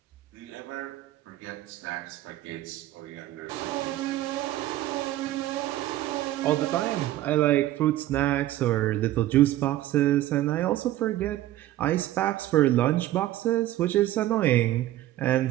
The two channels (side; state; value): left; quieter; 14.7 dB